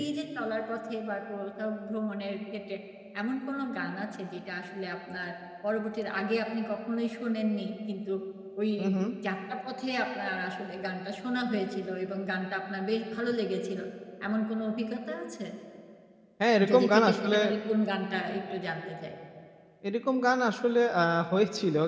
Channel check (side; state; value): both; identical; correlation 1.00